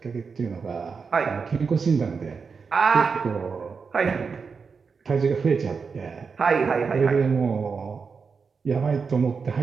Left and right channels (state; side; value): quieter; left; 5.4 dB